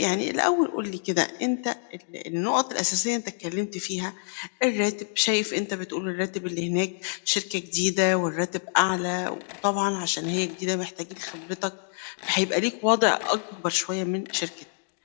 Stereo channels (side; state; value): right; silent; digital silence